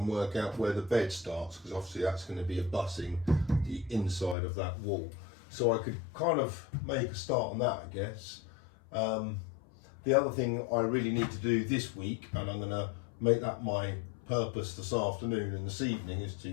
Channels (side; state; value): right; drops out; at 4.4 s